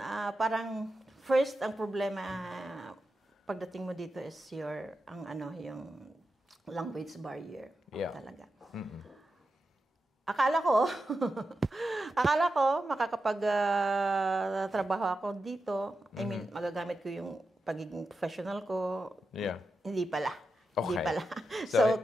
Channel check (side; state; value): both; normal; correlation 0.89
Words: Parang first, ang problema pagdating mo dito is yung language barrier. Yeah. Talaga. Akala ko makakapag-trabaho ako dito. I mean, magagamit ko yung pagiging professional ko. Yeah. Hindi pala. Okay. Hindi pala. So,